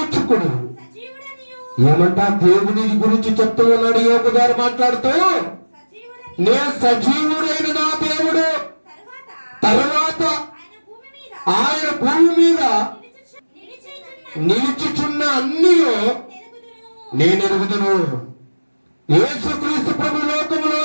ఏమంటా దేవుని గురించి చెప్తూ ఉన్నాడు యోబు గారు మాట్లాడుతూ, నేను సజీవుడైన నా దేవుడు, తర్వాత ఆయన భూమి మీద నిలిచిచున్న అన్నీ నేను ఎరుగుదును. యేసుక్రీస్తు ప్రభు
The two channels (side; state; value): both; inverted; correlation -1.00